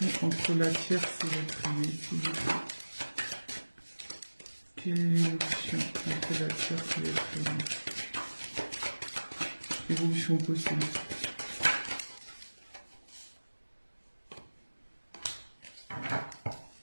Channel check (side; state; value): both; inverted; correlation -1.00